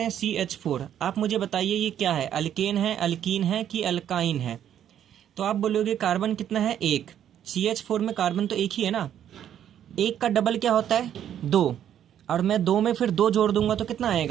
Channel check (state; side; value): quieter; left; 10.1 dB